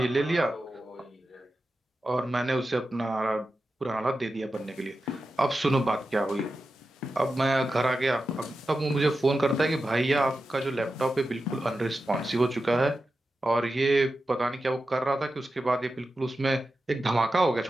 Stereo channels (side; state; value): both; normal; correlation 0.92